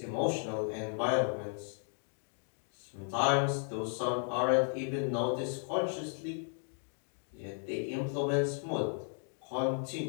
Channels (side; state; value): right; silent; 54 dB below the other